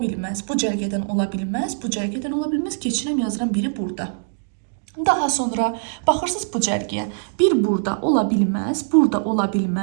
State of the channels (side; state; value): left; silent; digital silence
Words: Bu cərgədən ola bilməz. Bu cərgədən ola bilməz. Keçirəm yazıram biri burada. Daha sonra baxırsınız bu cərgəyə. Bir burada ola bilməz. Burada ola